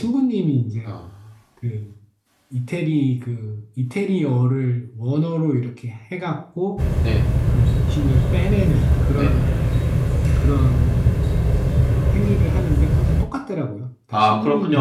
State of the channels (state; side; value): identical; both; correlation 1.00